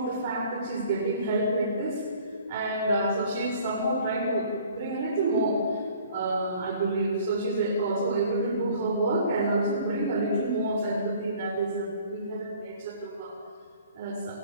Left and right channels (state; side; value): inverted; both; correlation -0.53